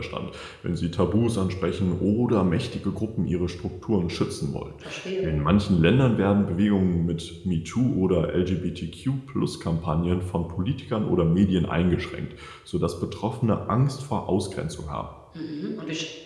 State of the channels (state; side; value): identical; both; correlation 1.00